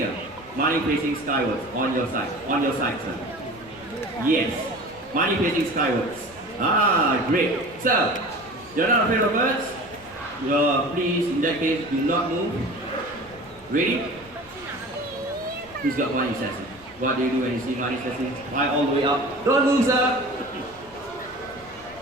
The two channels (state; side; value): noise; left; rumble, 24 dB below the sound